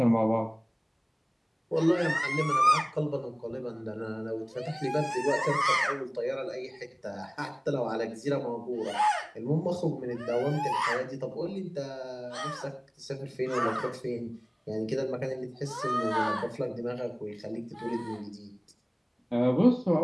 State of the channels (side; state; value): both; identical; correlation 1.00